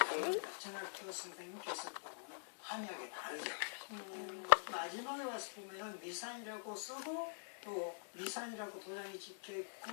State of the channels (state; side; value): silent; right; digital silence